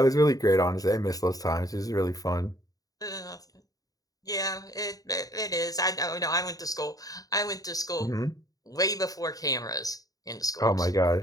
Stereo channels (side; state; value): right; late; 0.18 ms